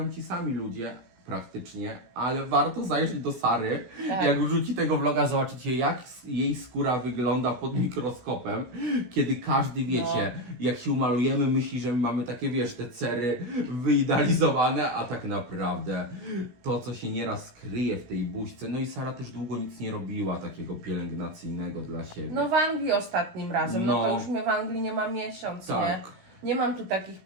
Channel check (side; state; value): left; late; 16 ms